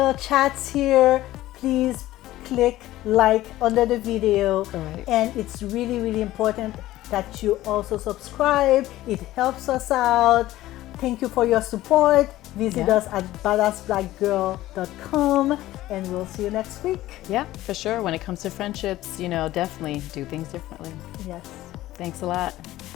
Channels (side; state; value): right; quieter; 15.6 dB